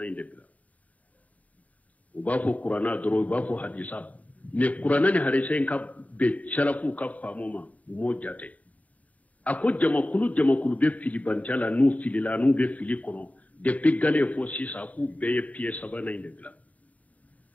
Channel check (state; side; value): late; right; 0.070 ms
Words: inde bila uba fo qur'ana doro uba fo hadisa ne qur'ana ni hadisa in ka be sharafu ka famu ma mo jate ako jamakulu be fili bantala nu filila nu be fili kono depuis gale fo sisa ako be ye piye sabana inde bila